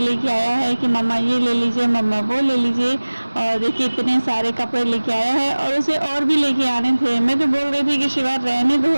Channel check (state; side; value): inverted; both; correlation -1.00